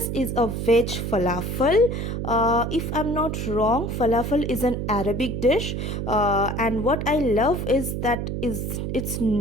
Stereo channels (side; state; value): right; noise; hum, 3 dB below the sound